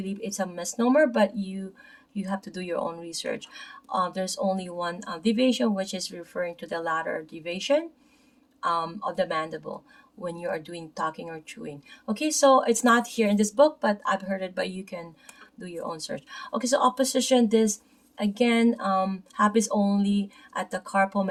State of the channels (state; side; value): identical; both; correlation 1.00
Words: it's a misnomer, but you have to do your own research. There's only one deviation, which is referring to the lateral deviation of the mandible when you are doing talking or chewing. Okay, so it's not here in this book, but I've heard it, but you can do your own search. Okay, so opposition, this again happens only at the carpal